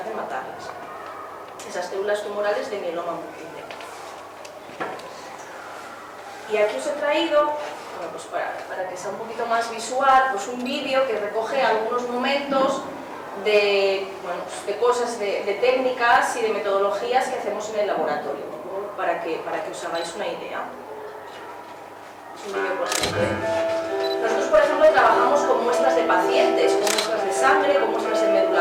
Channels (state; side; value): identical; both; correlation 1.00